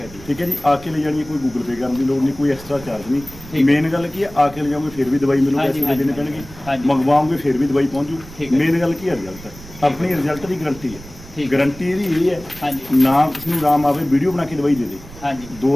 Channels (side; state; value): right; noise; rumble, 17 dB below the sound